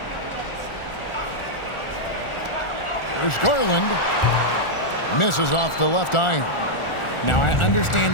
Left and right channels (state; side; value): late; right; 1.4 ms